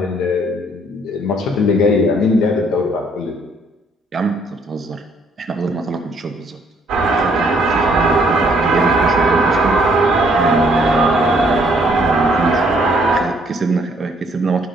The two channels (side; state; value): both; normal; correlation 0.65